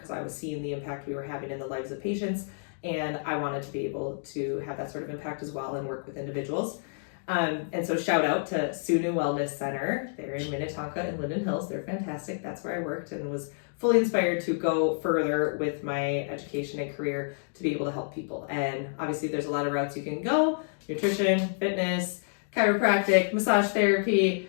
I was seeing the impact we were having in the lives of patients, and I wanted to be able to have that sort of impact as well and work with individuals. And so shout out to Sunu Wellness Center. They're in Minnetonka and Linden Hills. They're fantastic. That's where I worked, and was fully inspired to go further with my education and career to be able to help people. And obviously there's a lot of routes you can go: nutrition, fitness, chiropractic, massage therapy,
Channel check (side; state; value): right; silent; digital silence